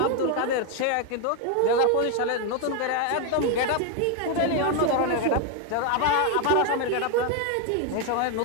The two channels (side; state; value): both; different; correlation 0.01